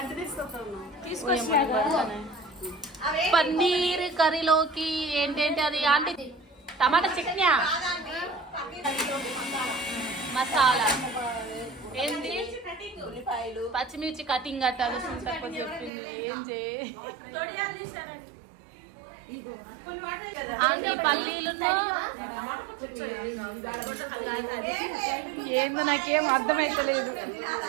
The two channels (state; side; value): drops out; left; at 15.9 s